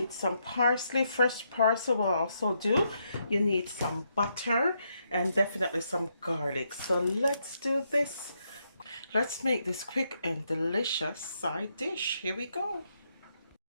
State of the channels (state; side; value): inverted; both; correlation -0.78